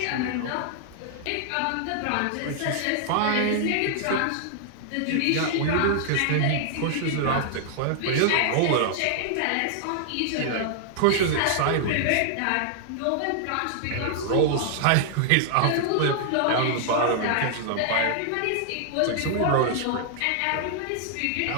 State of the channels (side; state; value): both; different; correlation -0.01